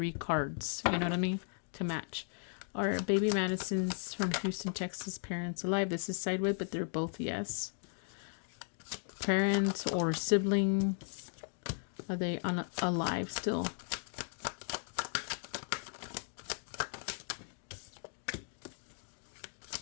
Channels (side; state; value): right; silent; 53 dB below the other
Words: cards. You know what I mean? To match. Are baby Madison's from Houston, Texas parents alive? This is sideways, but they're both yes. Parents or sibling, are they alive still?